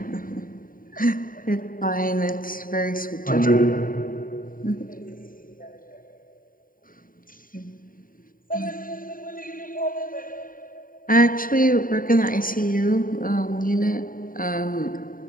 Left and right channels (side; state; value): right; late; 0.41 ms